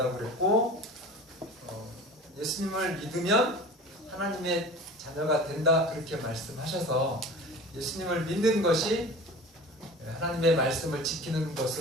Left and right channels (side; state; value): both; normal; correlation 0.38